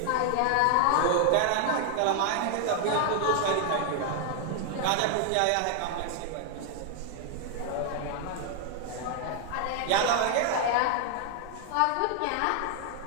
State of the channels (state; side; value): different; both; correlation 0.00